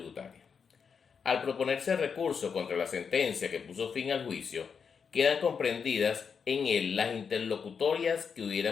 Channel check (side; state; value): right; quieter; 6.2 dB